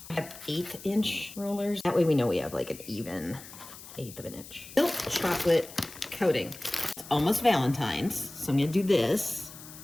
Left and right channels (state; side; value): noise; left; hiss, 16 dB below the sound